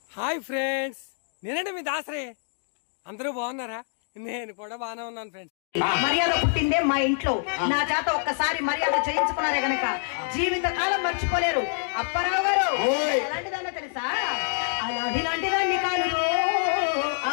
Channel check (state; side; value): silent; right; digital silence